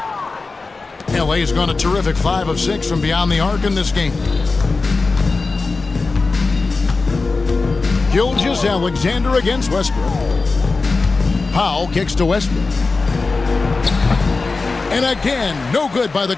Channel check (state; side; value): quieter; right; 3.9 dB